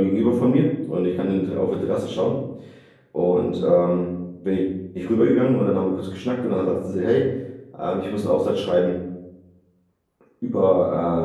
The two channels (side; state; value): both; identical; correlation 1.00